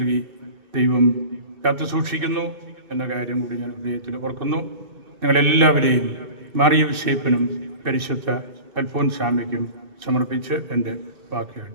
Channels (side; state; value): left; late; 2.6 ms